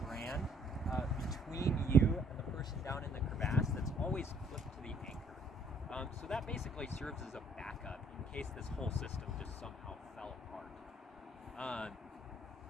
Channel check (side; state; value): both; normal; correlation 0.61